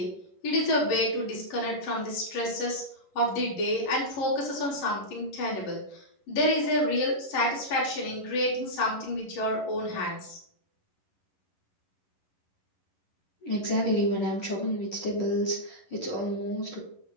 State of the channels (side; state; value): right; late; 11 ms